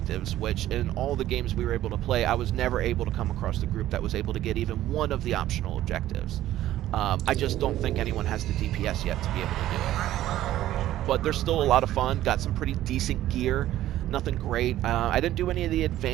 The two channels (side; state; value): left; quieter; 13.7 dB